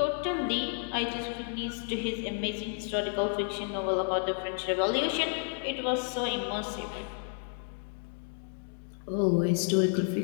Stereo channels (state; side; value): silent; right; 57 dB below the other